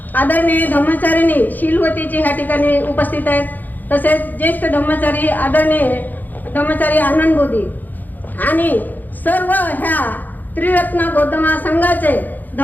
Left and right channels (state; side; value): late; right; 0.085 ms